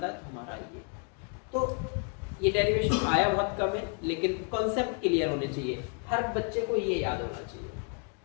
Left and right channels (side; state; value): right; quieter; 40.0 dB